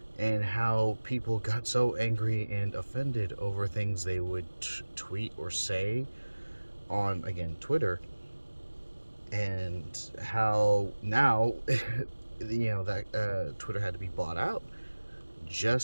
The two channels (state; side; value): inverted; both; correlation -1.00